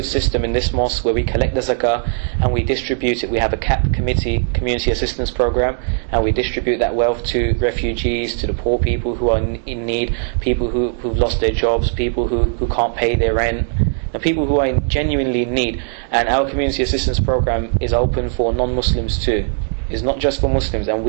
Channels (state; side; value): silent; left; 67 dB below the other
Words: system in this mosque where we collect the zakah and we distribute it. We have a CAP committee, community assistance program, and we distribute that wealth to refugees, to the poor people who are in need, people who've lost their jobs, people who can't pay their rent, and people who are genuinely in need. And our community assistance program is open for non-Muslims too. It's not just for Muslims, and